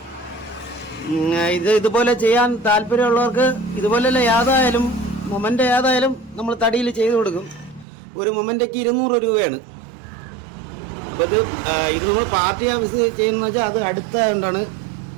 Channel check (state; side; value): drops out; left; at 7.9 s